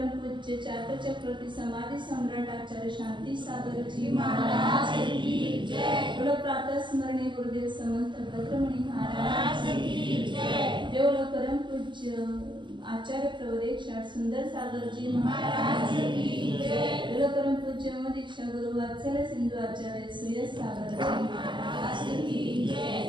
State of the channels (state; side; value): late; left; 0.23 ms